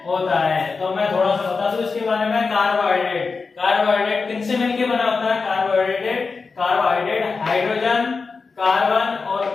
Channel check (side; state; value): right; quieter; 4.6 dB